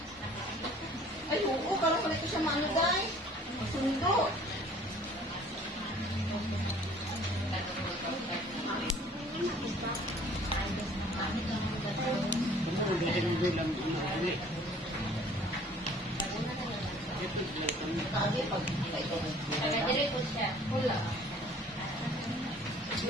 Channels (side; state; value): both; normal; correlation 0.53